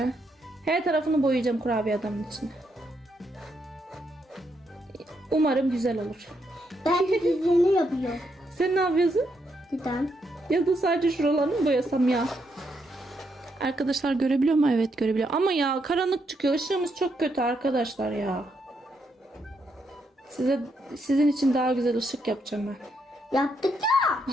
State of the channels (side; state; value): both; normal; correlation 0.78